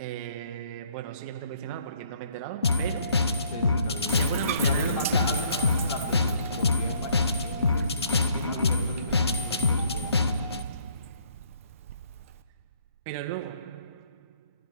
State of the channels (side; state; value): both; inverted; correlation -0.64